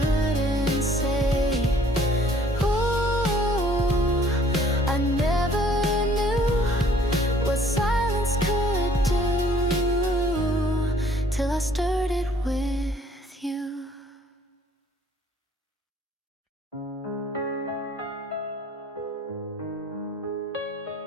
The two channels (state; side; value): normal; both; correlation 0.58